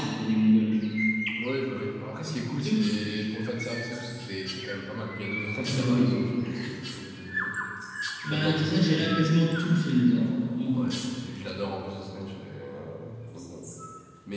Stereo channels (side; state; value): both; identical; correlation 1.00